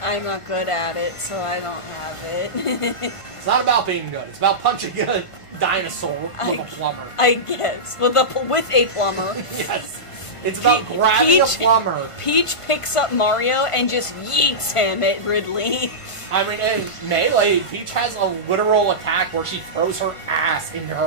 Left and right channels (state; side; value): late; right; 1.5 ms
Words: not good at it, so I don't have it. It's not about being good. It's about punching a dinosaur with a plumber. I guess. With a plumber. Yes. It's about grabbing a plumber. Peach picks up Mario and just yeets him at Ridley. I mean, in Melee, Peach has a literal attack where she throws her ass into